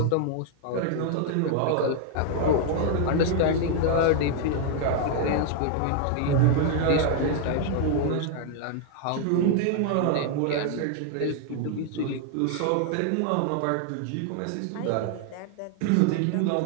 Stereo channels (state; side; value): different; both; correlation 0.00